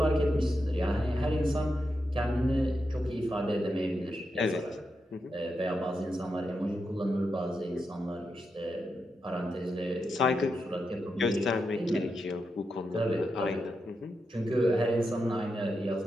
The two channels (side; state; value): both; normal; correlation 0.86